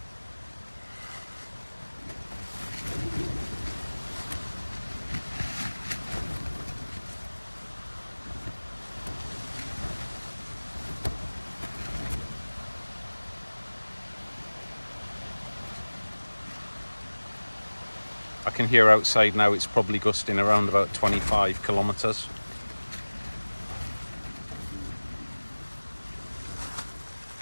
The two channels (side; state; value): both; inverted; correlation -1.00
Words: I can hear outside now it's probably gusting around about 25 kilometers.